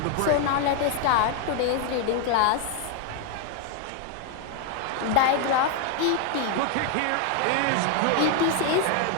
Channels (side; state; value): both; different; correlation 0.01